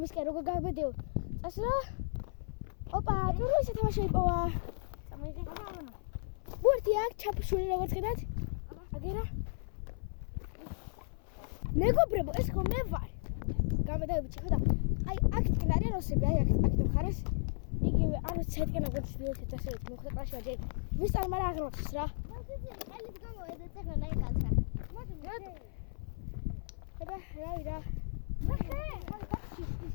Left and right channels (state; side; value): silent; right; 55 dB below the other